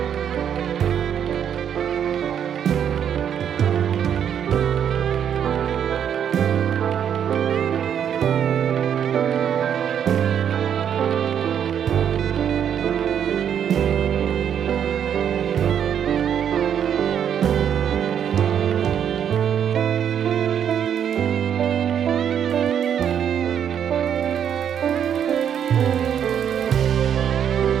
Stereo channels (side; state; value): left; quieter; 8.8 dB